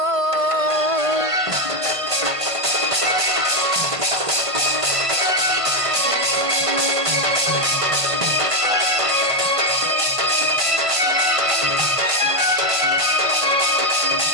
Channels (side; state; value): left; late; 1.5 ms